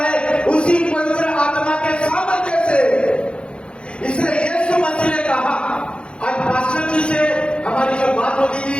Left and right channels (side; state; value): right; late; 0.056 ms